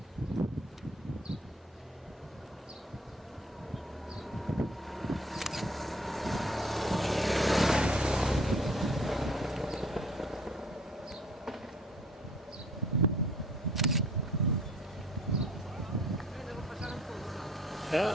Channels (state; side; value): normal; both; correlation 0.55